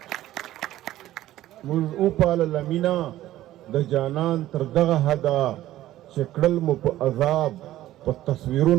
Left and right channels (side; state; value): left; quieter; 14.4 dB